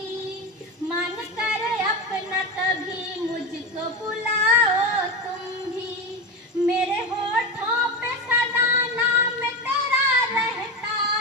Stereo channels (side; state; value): both; normal; correlation 0.19